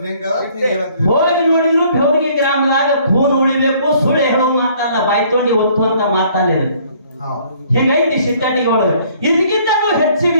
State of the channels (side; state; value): both; inverted; correlation -0.60